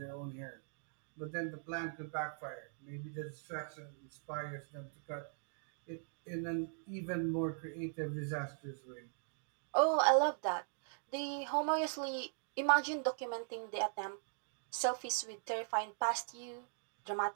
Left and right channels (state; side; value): silent; left; digital silence